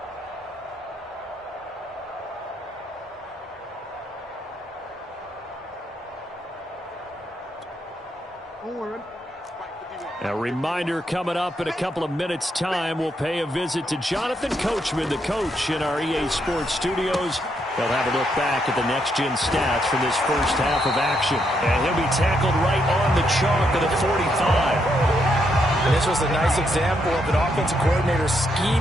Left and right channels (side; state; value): both; normal; correlation 0.77